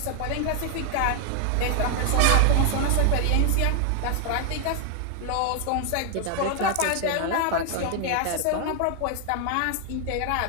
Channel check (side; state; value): both; different; correlation 0.00